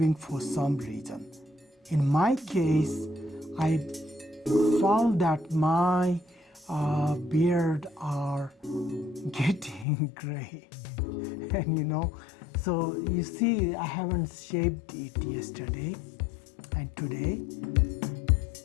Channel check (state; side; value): drops out; right; at 9.9 s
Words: for some reason. In my case, I found that my beard are getting gray, and so you see, I haven't shaved it yesterday and today.